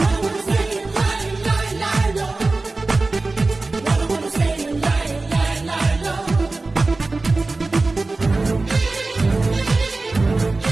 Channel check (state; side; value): quieter; left; 3.4 dB